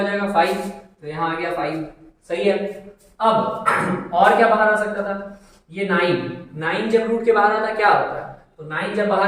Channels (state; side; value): identical; both; correlation 1.00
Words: जाएगा 5, तो यहाँ आ गया 5। सही है। अब और क्या बाहर आ सकता था, ये 9 जब रूट के बाहर आता है क्या होता है, तो 9 जब